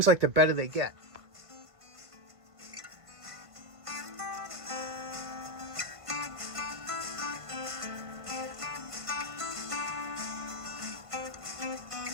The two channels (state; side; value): late; left; 1.5 ms